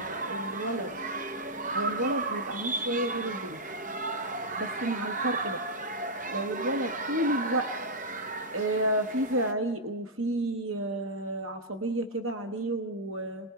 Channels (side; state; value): both; normal; correlation -0.07